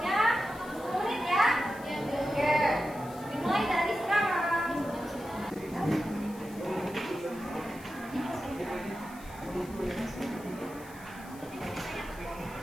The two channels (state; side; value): noise; left; hiss, 21 dB below the sound